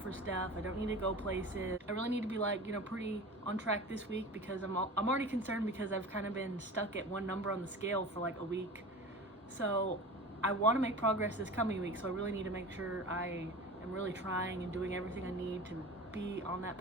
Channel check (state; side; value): normal; both; correlation 0.35